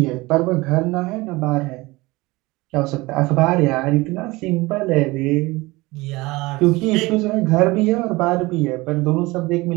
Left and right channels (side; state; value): left; quieter; 21.6 dB